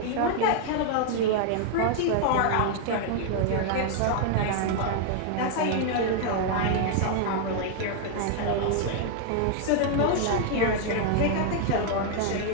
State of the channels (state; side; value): different; both; correlation 0.00